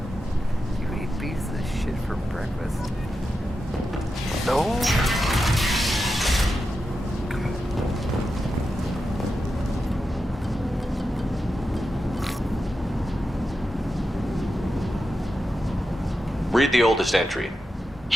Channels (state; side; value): normal; both; correlation 0.89